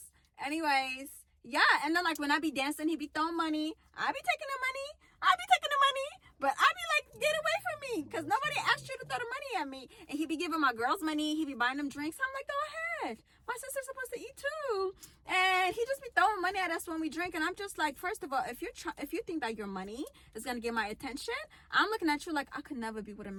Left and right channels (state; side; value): identical; both; correlation 1.00